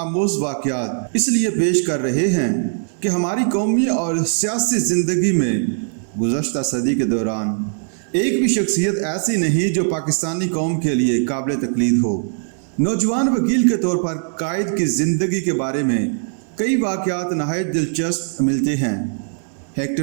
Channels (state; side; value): silent; left; 59 dB below the other